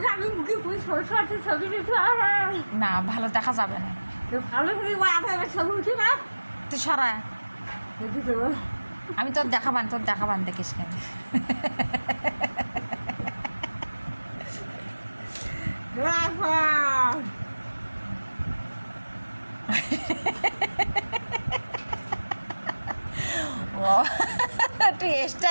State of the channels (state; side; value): inverted; both; correlation -1.00